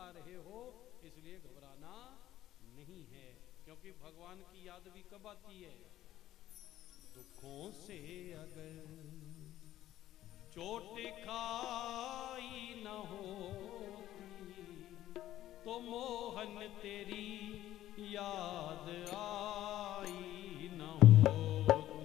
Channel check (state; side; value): quieter; right; 13.6 dB